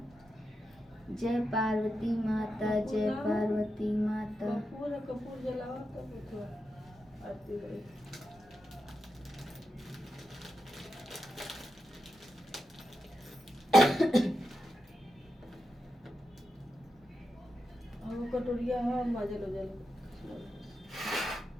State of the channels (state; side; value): normal; both; correlation 0.87